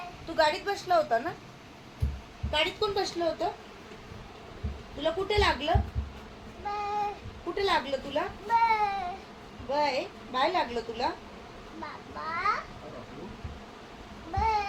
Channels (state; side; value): identical; both; correlation 1.00